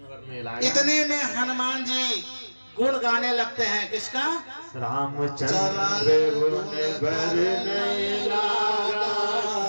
इतने में हनुमान जी गुण गाने लगते हैं। किसका? रामचंद्र गुण बरने लगा,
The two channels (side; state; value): both; inverted; correlation -1.00